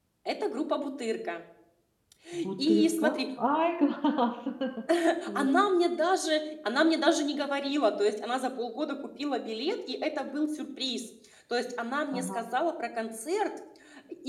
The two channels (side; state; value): both; identical; correlation 1.00